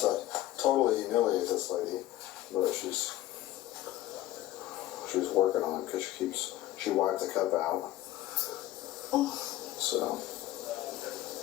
totally humiliate this lady, but she's working on it because she wiped the cup out. So.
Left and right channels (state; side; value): quieter; right; 14.8 dB